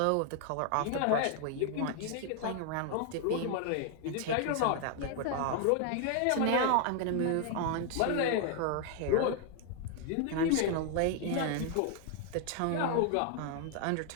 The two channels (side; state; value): both; different; correlation 0.00